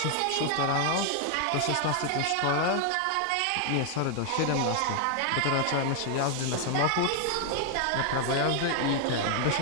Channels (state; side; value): different; both; correlation 0.00